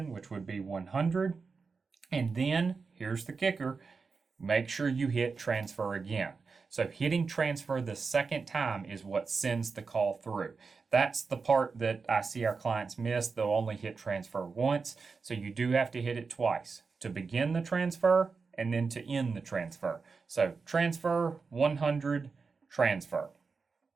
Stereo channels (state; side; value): quieter; left; 4.8 dB